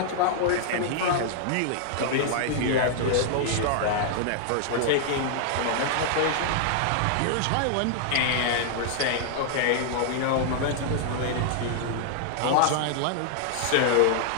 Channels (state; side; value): different; both; correlation -0.01